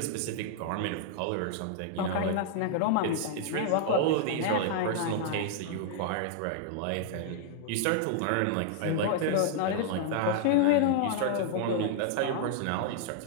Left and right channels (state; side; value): different; both; correlation -0.01